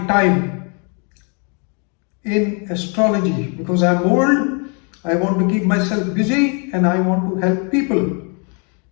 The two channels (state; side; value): quieter; right; 36.6 dB